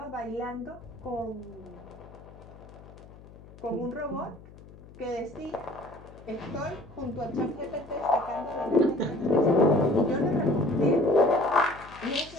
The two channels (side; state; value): left; noise; hum, 20 dB below the sound